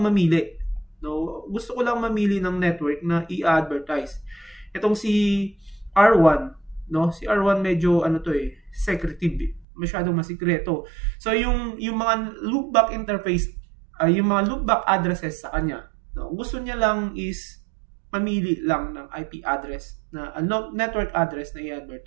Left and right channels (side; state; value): left; drops out; at 9.7 s